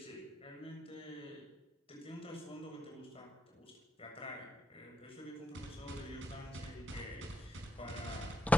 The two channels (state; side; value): normal; both; correlation 0.79